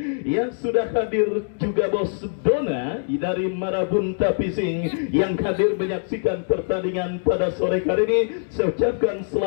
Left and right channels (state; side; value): silent; right; digital silence